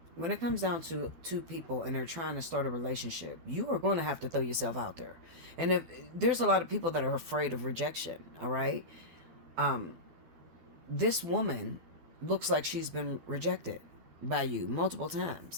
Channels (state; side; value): late; left; 12 ms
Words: when it comes down to two people and they're trying to start a relationship, you are going to have to throw yourself out there. And if there's a lot of people that are afraid of rejection, all right? This woman looks like she's been rejected by you multiple